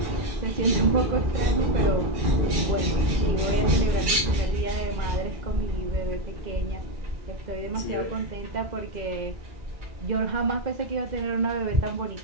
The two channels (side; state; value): left; late; 2.0 ms